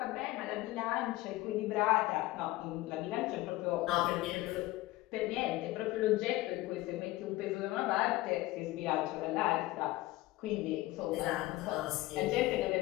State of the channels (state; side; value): quieter; right; 18.3 dB